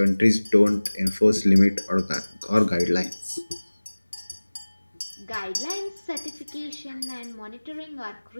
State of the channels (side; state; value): both; inverted; correlation -1.00